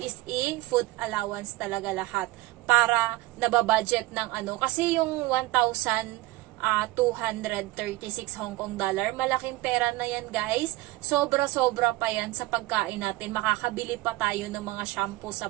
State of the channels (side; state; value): left; quieter; 18.8 dB